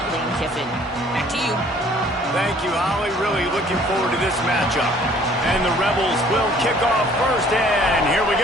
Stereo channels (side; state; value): both; normal; correlation 0.56